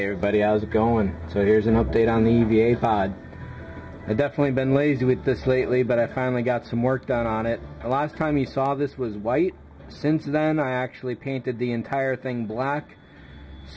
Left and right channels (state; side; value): identical; both; correlation 1.00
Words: everybody, how's it going? So here's an update on the EVA Pod. I've definitely been lazy with this lately, but I finally got some work done on it. The last time you saw this was white. Since then, I actually painted the entire thing black.